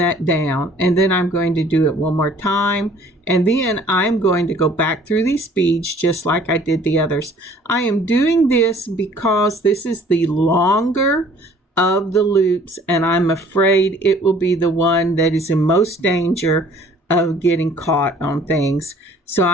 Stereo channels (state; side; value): normal; both; correlation 0.55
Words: down, and then I'm going to do it one more time, and then I'm going to go back through these beads just like I did the others. I am doing this because this is the longer of the loops, and I'm afraid it will be the one that is in most danger of getting caught on things. So